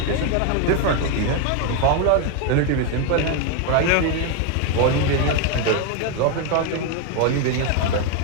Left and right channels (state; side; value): different; both; correlation 0.01